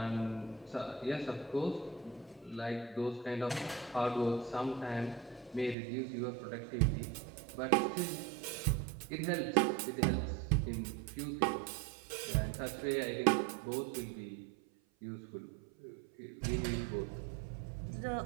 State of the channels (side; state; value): left; drops out; at 5.8 s